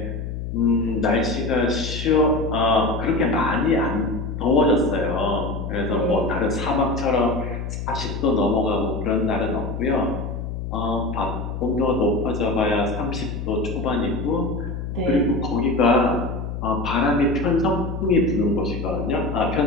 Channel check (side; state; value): left; noise; hum, 6 dB below the sound